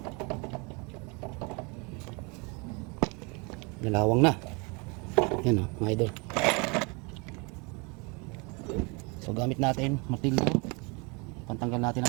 Lalawang na. Yan oh mga idol. So gamit natin martilyo, pantanggal natin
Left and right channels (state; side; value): quieter; left; 30.2 dB